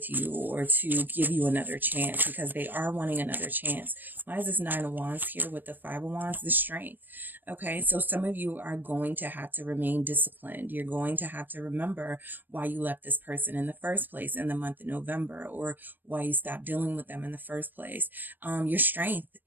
you or to give you another chance? Because they are wanting another chance. Why is this Nine of Wands here with the Five of Wands? The strength. Okay, so some of you are going to have to remain disciplined. You're going to have to remember why you left this person in the first place in the month of November, or why you stopped dealing with them in the first place. Your strength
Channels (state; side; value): late; left; 0.092 ms